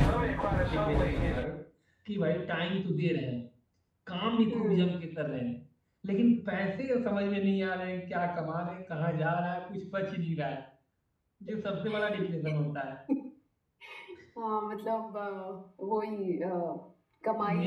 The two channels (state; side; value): identical; both; correlation 1.00